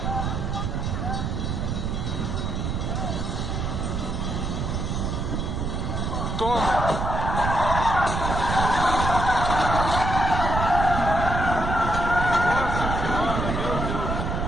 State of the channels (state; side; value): noise; right; rumble, 1 dB below the sound